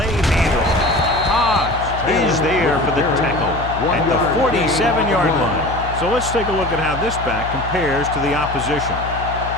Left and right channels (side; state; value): left; noise; hum, 9 dB below the sound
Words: handle. Hodge is there for the tackle at the 47-yard line. So let's take a look at how this back compares to the opposition.